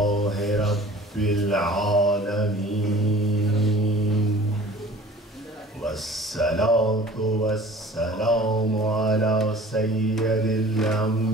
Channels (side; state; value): both; normal; correlation 0.46